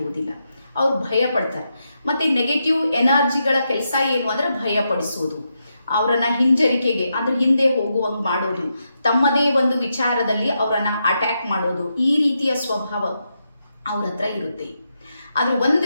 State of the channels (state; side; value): inverted; both; correlation -0.84